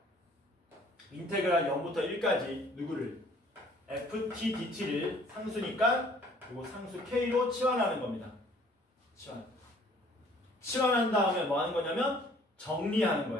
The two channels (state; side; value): normal; both; correlation 0.57